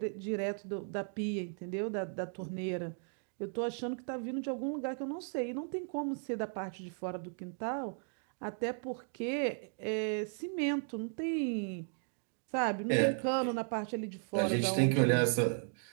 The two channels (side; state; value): left; silent; 54 dB below the other